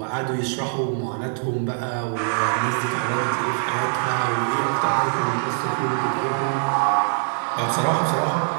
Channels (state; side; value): silent; left; digital silence